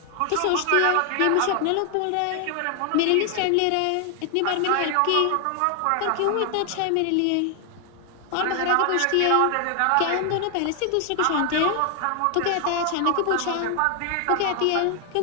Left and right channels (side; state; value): both; different; correlation 0.00